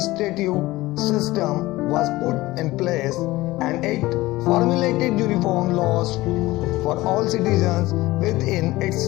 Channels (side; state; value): right; quieter; 18.7 dB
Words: system was put in place, and it formulated uniform laws for all citizens within its